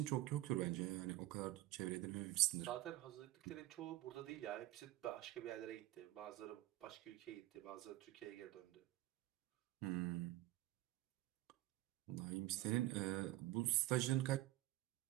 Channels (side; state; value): left; quieter; 15.6 dB